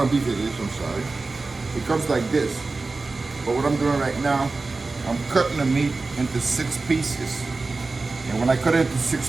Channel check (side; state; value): left; quieter; 3.7 dB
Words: beef it is, I'm sorry. It comes like this. But what I'm doing right now, I'm cutting the meat into 6 pieces. And when I cut it into 6